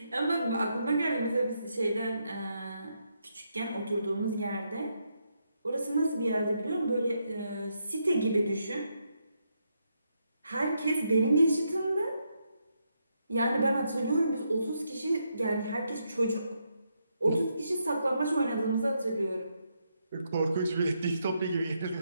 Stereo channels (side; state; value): both; inverted; correlation -0.80